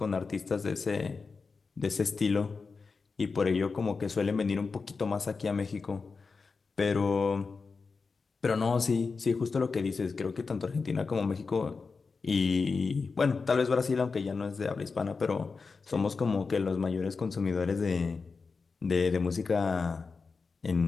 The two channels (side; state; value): right; quieter; 4.6 dB